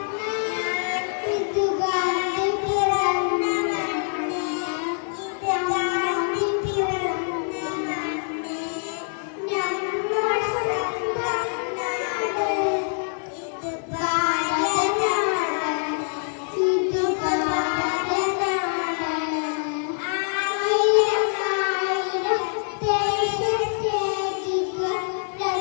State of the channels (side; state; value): right; silent; 62 dB below the other